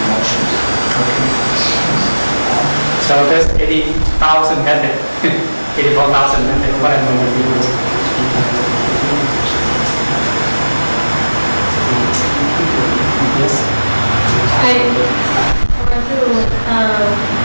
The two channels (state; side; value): inverted; both; correlation -1.00